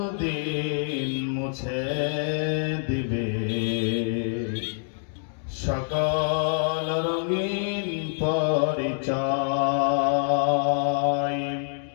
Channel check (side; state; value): right; silent; digital silence